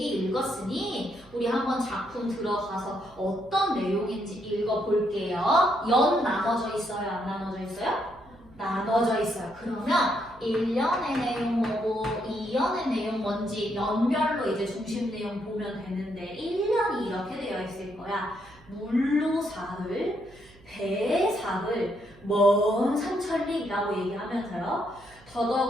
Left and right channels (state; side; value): noise; right; hum, 25 dB below the sound